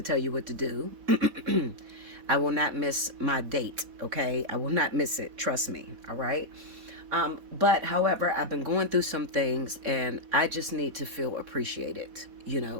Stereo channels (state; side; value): late; left; 4.1 ms